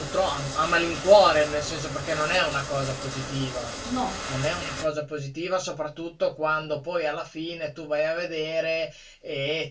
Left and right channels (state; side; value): identical; both; correlation 1.00